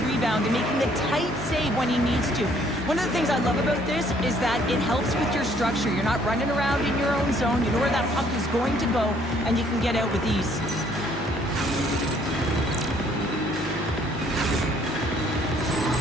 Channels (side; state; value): both; normal; correlation 0.63